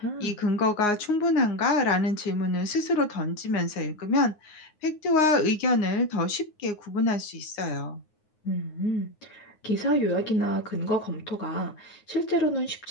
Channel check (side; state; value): right; late; 9.6 ms